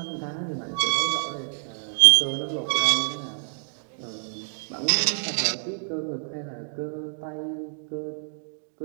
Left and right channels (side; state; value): left; silent; digital silence